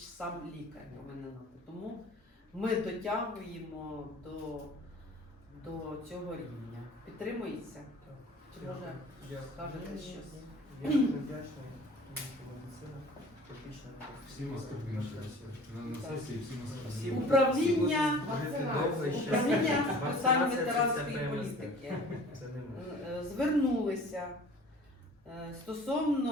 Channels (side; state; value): both; normal; correlation 0.46